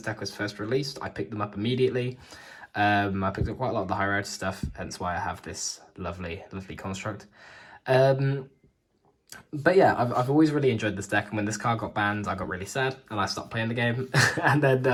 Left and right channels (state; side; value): identical; both; correlation 1.00